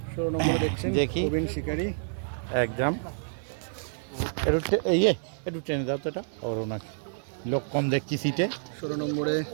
16 নম্বরে দেখছেন দেখি। প্রবীণ শিকারি। একদম একটু টেনে দাও তো, এটা ওর ওনার লোক কম দেখছি সিটে। 16 নম্বরে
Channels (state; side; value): silent; left; 56 dB below the other